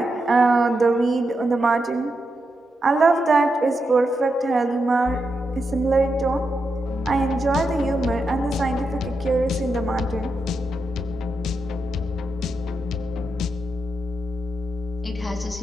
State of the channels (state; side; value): normal; both; correlation 0.86